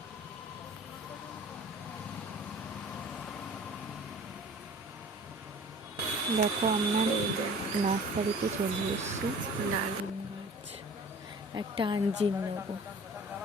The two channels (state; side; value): normal; both; correlation 0.45